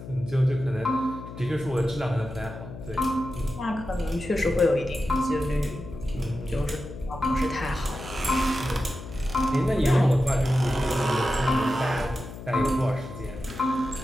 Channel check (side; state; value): left; noise; hum, 12 dB below the sound